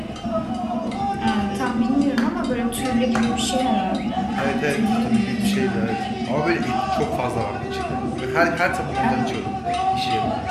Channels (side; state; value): both; identical; correlation 1.00